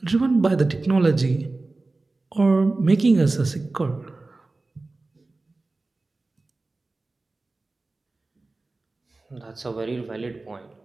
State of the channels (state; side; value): quieter; left; 3.3 dB